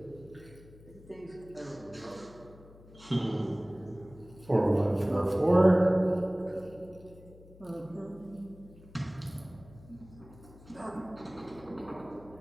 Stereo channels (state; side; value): noise; left; hum, 21 dB below the sound